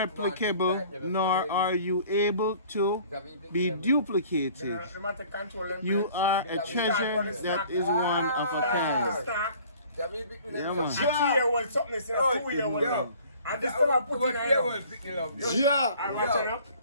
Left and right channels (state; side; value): inverted; both; correlation -0.51